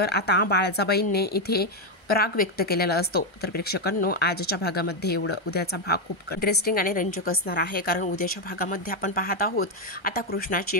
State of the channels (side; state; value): right; late; 1.3 ms